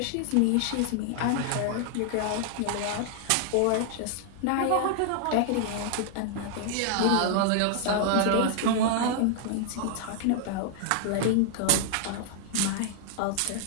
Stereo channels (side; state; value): both; different; correlation -0.01